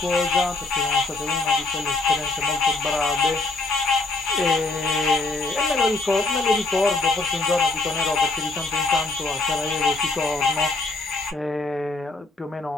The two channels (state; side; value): quieter; right; 3.3 dB